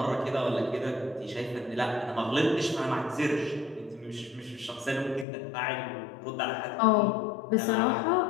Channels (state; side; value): drops out; right; at 5.2 s